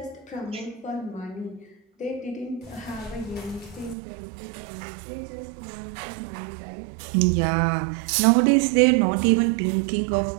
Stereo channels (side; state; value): left; drops out; at 4.0 s